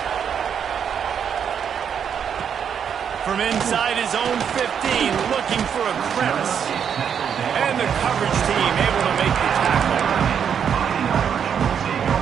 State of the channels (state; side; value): quieter; left; 7.8 dB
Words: From inside his own 15, looking for a crevice. And the coverage team able to make the tackle.